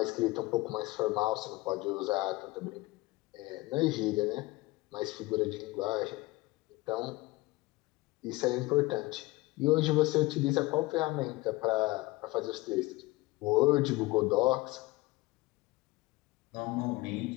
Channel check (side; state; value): right; quieter; 20.9 dB